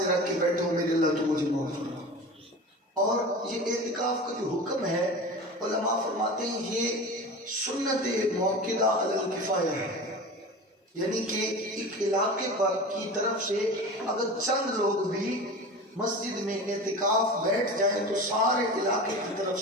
رکھ کے بیٹھو، میرے اللہ تو مجھے معاف کرنا۔ اور یہ اعتکاف کا جو حکم ہے، علماء فرماتے ہیں یہ سنت موقدہ علی الکفایہ ہے، یعنی کہ ایک علاقے پر کی طرف سے اگر چند لوگ بھی مسجد میں اعتکاف بیٹھ جائیں تو سارے علاقے کی طرف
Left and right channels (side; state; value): both; normal; correlation 0.32